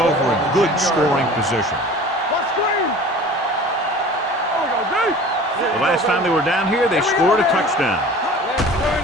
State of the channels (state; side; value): normal; both; correlation 0.42